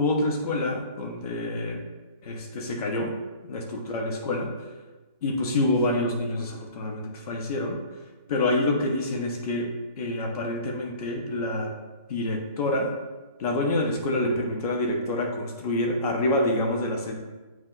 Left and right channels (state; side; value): inverted; both; correlation -0.42